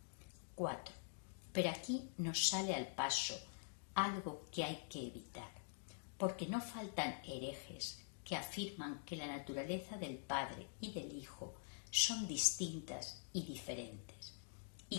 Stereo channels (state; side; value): silent; right; digital silence